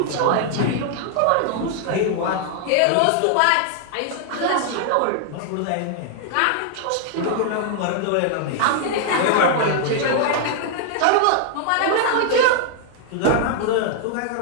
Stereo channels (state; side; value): different; both; correlation 0.00